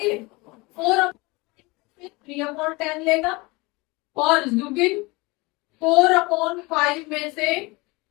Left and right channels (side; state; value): right; quieter; 24.5 dB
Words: 3/10 लेगा। और जुबिन 4/5 में से